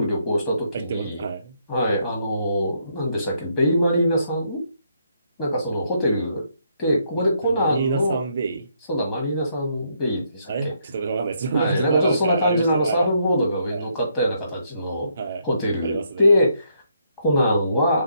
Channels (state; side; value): inverted; both; correlation -0.74